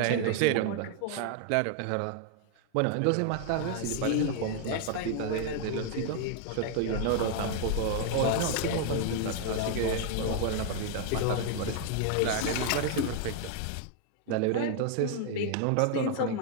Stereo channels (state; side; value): different; both; correlation 0.00